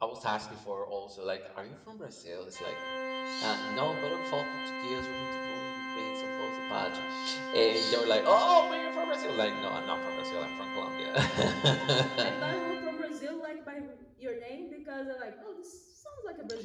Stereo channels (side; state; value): both; identical; correlation 1.00